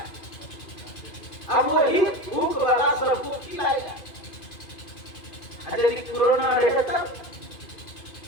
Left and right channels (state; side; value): late; right; 2.5 ms